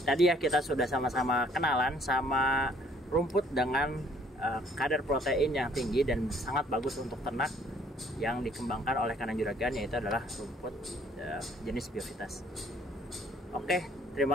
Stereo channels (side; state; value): both; normal; correlation 0.61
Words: tadi ya kita sudah sama-sama kenalan sama rumput dengan kadar protein yang tinggi dan sangat bagus untuk ternak yang dikembangkan oleh Kandang Juragan, yaitu adalah rumput jenis Biovitas. Oke, terima